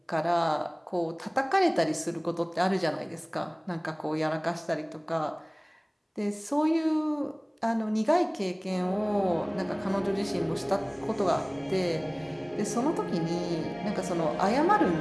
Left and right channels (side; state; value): both; identical; correlation 1.00